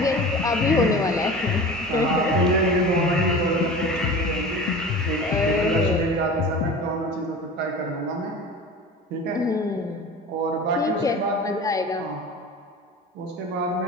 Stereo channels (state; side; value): normal; both; correlation 0.36